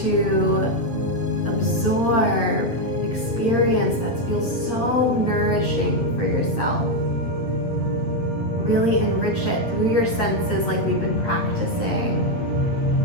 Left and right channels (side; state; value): right; late; 8.7 ms